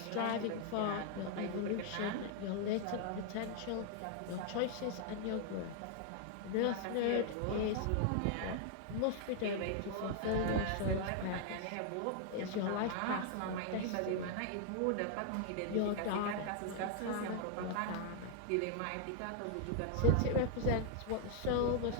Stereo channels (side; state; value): both; different; correlation 0.00